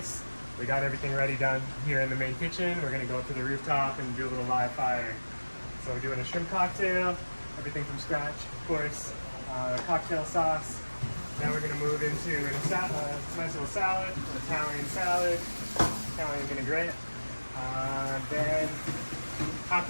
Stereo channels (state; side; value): inverted; both; correlation -1.00